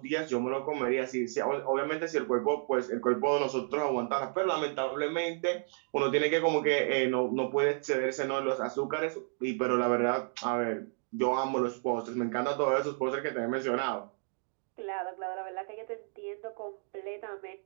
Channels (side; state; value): left; silent; 57 dB below the other